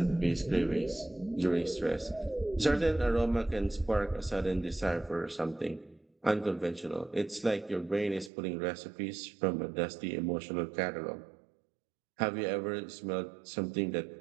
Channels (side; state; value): left; drops out; at 8.3 s